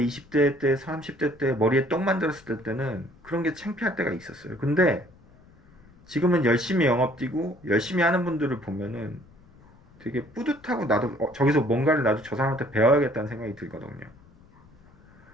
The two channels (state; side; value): noise; left; rumble, 27 dB below the sound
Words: 때 30대 때 머리에 떡 만들었을 때는 그런 게 창피할 때가 있었어요. 근데 지금은 열심히 영업 뛰고 열심히 하는 분들을 보면은 되게 뿌듯하고, 나도 저기서 뭔가를 나도 저 사람한테 배워야겠다는 생각이 들거든요.